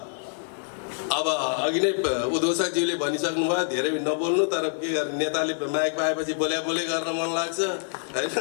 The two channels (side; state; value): right; silent; digital silence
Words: अब अघि नै उद्घोषकज्यूले भनिसक्नु भयो, धेरै नबोल्नु, तर के गर्ने, नेताले माइक पाएपछि बोले गर्न मन लाग्छ होइन,